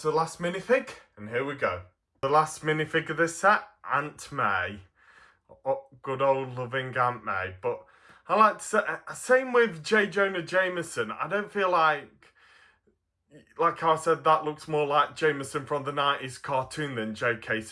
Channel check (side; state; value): both; identical; correlation 1.00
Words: the last minifig, and here we go. The last minifig of this set, Aunt May. Oh, good old loving Aunt May. But I like to say, same with J. Jonah Jameson, I don't feel like I said, that looks more like Jameson from the 90s cartoon than J.K.